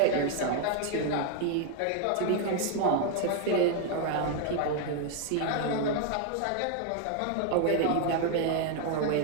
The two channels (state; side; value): different; both; correlation 0.01